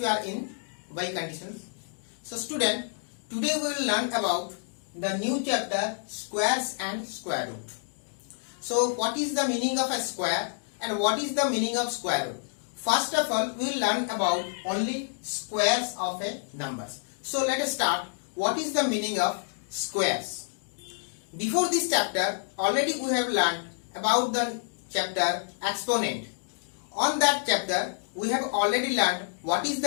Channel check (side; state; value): right; silent; digital silence